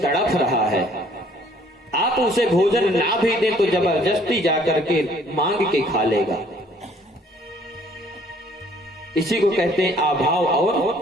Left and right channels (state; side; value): normal; both; correlation 0.60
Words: तड़प रहा है, आप उसे भोजन ना भी दें तो जबरदस्ती जाकर के मांग के खा लेगा। इसी को कहते हैं अभाव